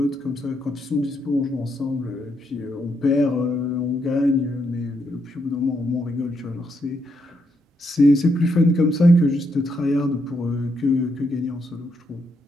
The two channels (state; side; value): normal; both; correlation 0.78